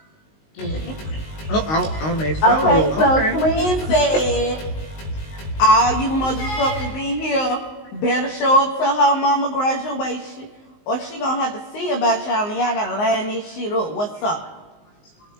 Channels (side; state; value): right; late; 19 ms